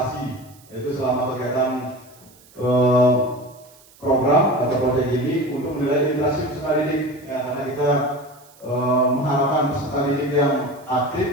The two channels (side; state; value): right; noise; hiss, 27 dB below the sound